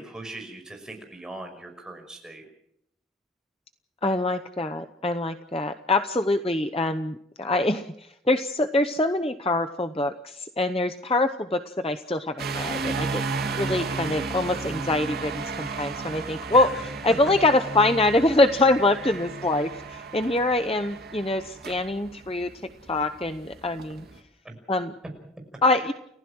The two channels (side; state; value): both; normal; correlation 0.46